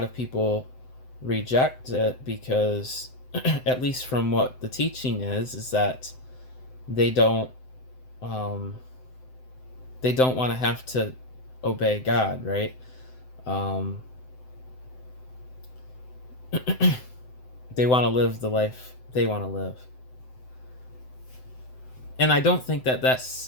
of people reject it because, at least from what the teaching is that they don't want to have to obey God, right? They want to live the life they want to live. And I don't think that that's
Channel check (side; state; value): right; late; 7.8 ms